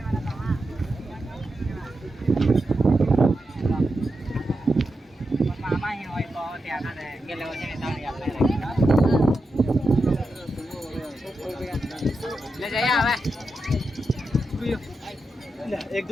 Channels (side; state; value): both; normal; correlation 0.88